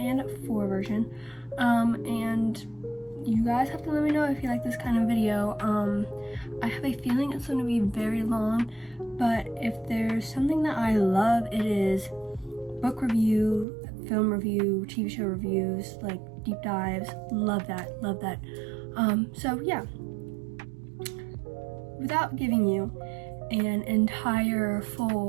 version, and you guys have to let me know if you like this kind of video. I have a feeling it's going to be very long, but if there's something that I love, it is book review, film review, TV show reviews, like deep dives. Love that. So yeah, without giving you an entire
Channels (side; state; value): left; drops out; at 13.7 s